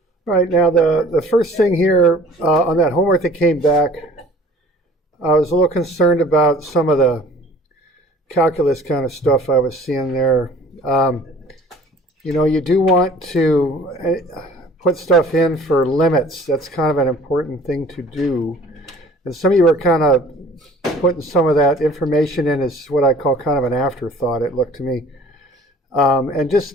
Right, now the first thing here on that homework that came back, I was a little concerned about some of the calculus kind of stuff I was seeing there. You do want to put stuff in for limits. That's kind of an important thing to do. And some of you are kind of putting some of that information in as what I call kind of an afterthought, it looked to me. And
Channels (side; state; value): both; normal; correlation 0.50